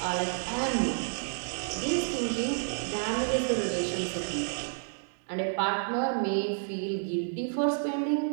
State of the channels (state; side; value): silent; left; digital silence